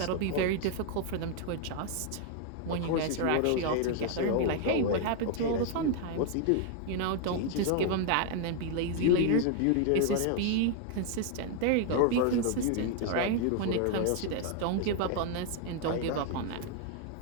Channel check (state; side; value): different; both; correlation 0.00